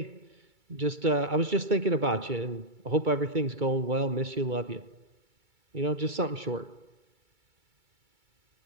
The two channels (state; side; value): late; left; 2.3 ms